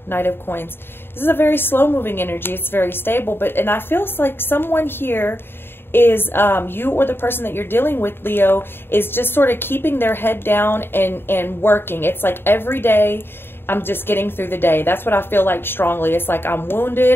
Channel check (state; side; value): late; right; 0.11 ms